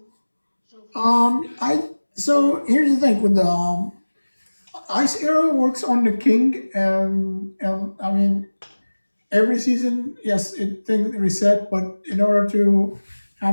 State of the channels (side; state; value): both; inverted; correlation -1.00